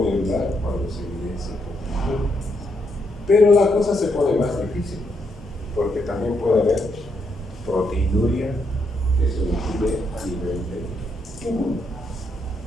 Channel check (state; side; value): normal; both; correlation 0.78